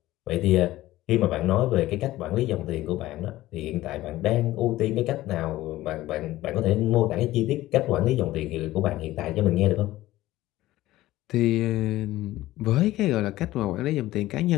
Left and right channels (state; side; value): quieter; right; 16.2 dB